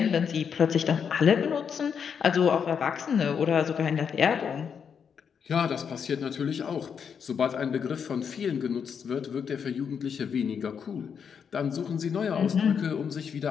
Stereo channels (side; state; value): right; quieter; 7.0 dB